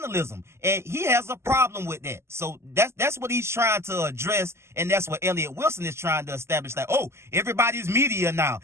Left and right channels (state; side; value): late; left; 0.13 ms